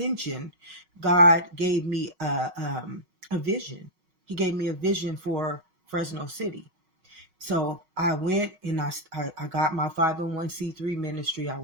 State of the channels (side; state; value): left; late; 5.4 ms